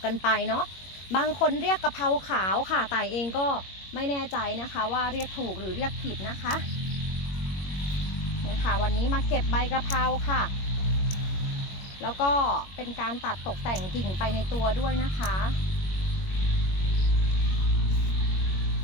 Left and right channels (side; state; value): right; late; 21 ms